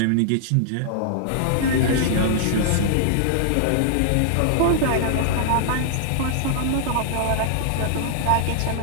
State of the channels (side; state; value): both; different; correlation -0.01